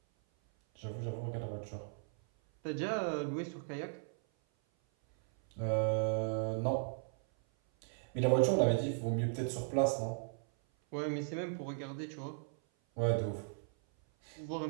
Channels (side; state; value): left; silent; 53 dB below the other